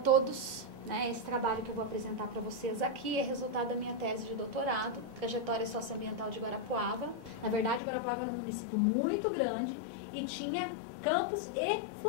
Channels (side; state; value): right; drops out; at 7.8 s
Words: Esse trabalho que eu vou apresentar para vocês aqui é resultado da minha tese de doutorado, Trajetória Socioambiental de Guarapuava. Na verdade, Guarapuava era um município muito grande e tinha campos e